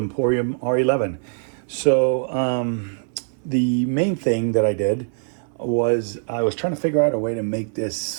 R11. So the main thing that I did was I was trying to figure out a way to make this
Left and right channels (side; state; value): left; silent; 64 dB below the other